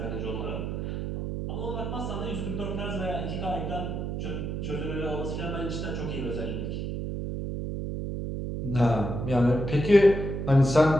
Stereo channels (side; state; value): right; noise; hum, 3 dB below the sound